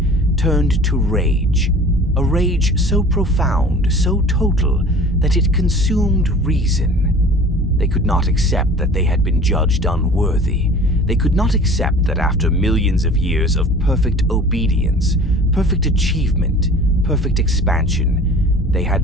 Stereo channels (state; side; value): normal; both; correlation 0.44